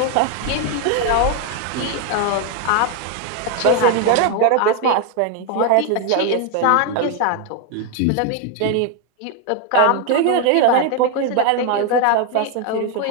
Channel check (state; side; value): different; both; correlation 0.01